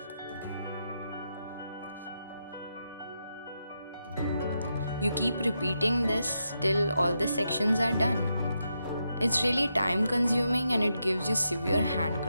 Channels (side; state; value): both; inverted; correlation -0.84